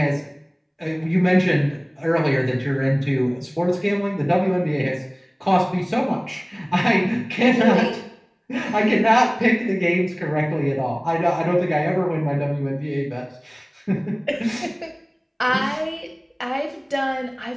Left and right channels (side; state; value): both; identical; correlation 1.00